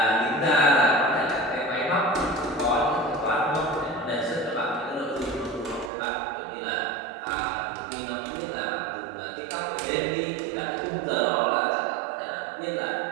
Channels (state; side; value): drops out; left; at 5.9 s